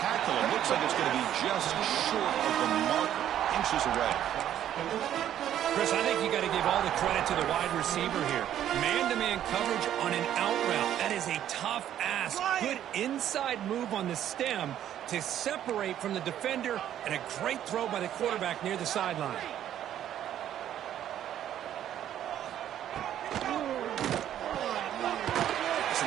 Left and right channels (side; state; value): left; quieter; 11.0 dB